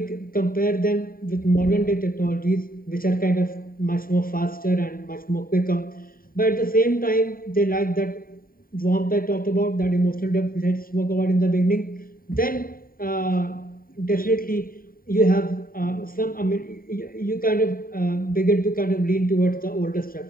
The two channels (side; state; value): right; late; 0.42 ms